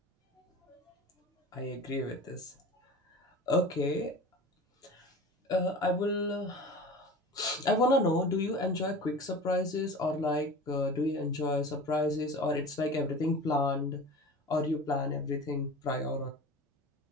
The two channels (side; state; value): both; normal; correlation 0.36